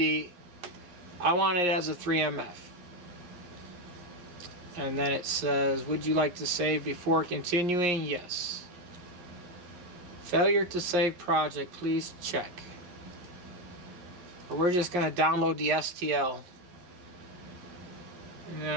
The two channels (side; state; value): left; late; 11 ms